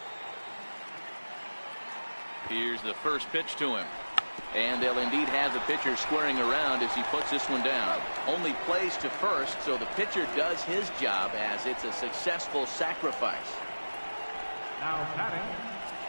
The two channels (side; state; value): both; inverted; correlation -1.00